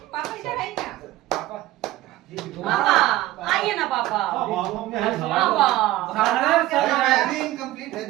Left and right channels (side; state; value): left; quieter; 16.0 dB